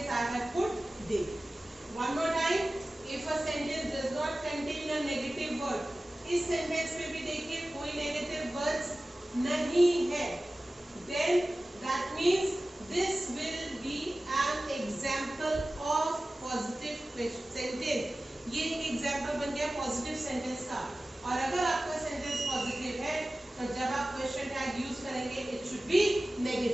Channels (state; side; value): normal; both; correlation 0.96